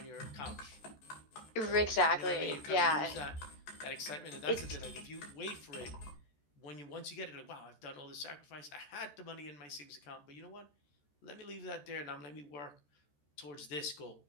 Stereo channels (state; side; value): late; right; 14 ms